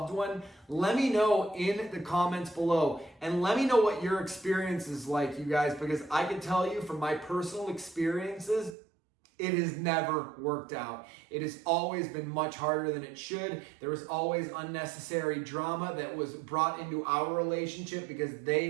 one? Let me know in the comments below, and let me know what your experience is like, you guys, because I can tell you from my personal experiences, it has never worked out. It has always been much harder than it should. There was always unnecessary drama that was brought into our relationship because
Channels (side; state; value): left; drops out; at 8.8 s